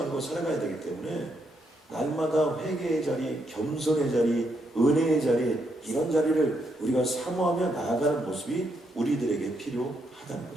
살아가야 되기 때문에 날마다 회개의 자리, 겸손의 자리, 은혜의 자리, 이런 자리를 우리가 사모하며 나아가는 모습이 우리들에게 필요하다는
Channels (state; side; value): normal; both; correlation 0.78